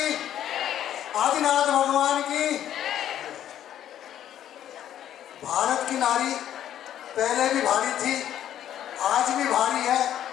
आदिनाथ भगवान की। भारत की नारी पहले भी भारी थी, आज भी भारी है।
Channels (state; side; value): quieter; right; 11.0 dB